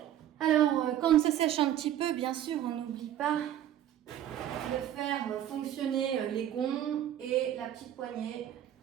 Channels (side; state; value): left; quieter; 11.3 dB